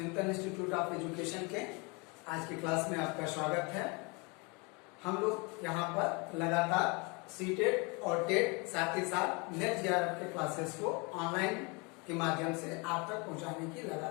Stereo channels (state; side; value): quieter; right; 29.7 dB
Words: institute of education के आज की क्लास में आपका स्वागत है। हम लोग यहाँ पर लगातार सीटेट और टेट साथ ही साथ नेट जेआरएफ के क्लासेस को ऑनलाइन के माध्यम से आप तक पहुँचाने की